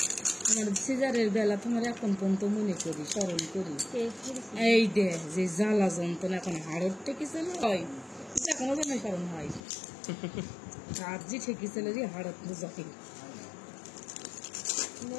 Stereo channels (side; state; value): right; drops out; at 9.6 s